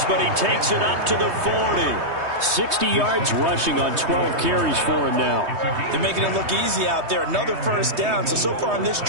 but he takes it up to the 40. 60 yards rushing on 12 carries for him now. They're making it look easy out there. Another first down. So far on this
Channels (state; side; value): late; left; 3.2 ms